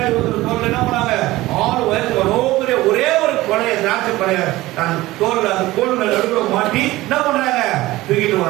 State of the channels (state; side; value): quieter; left; 18.1 dB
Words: ஒருத்தர் தோல்ல என்ன பண்ணாங்க, 6 வயசு ஒரே ஒரு கொலைய திராட்சை கொலைய தன் தோல்ல அந்த கோல் நடுவுல மாட்டி என்ன பண்றாங்க, தூக்கிட்டு